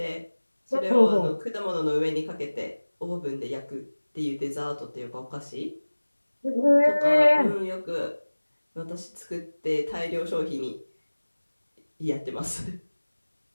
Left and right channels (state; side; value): inverted; both; correlation -1.00